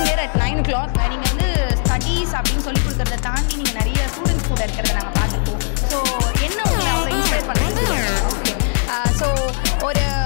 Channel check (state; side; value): silent; right; digital silence